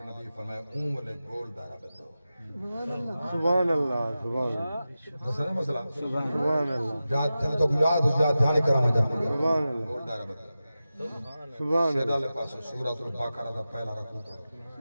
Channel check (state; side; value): inverted; both; correlation -0.94